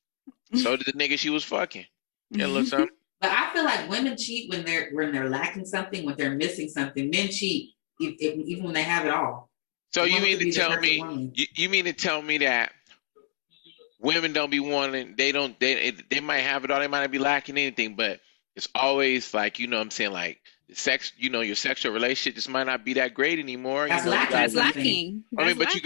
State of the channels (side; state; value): right; silent; digital silence